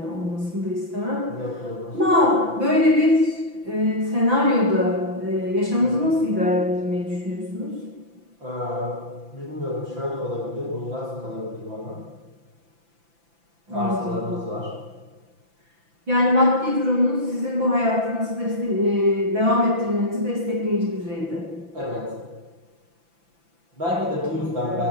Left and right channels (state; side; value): late; left; 5.9 ms